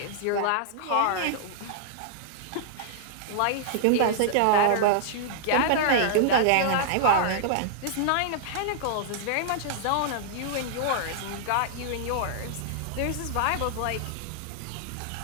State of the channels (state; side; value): different; both; correlation -0.01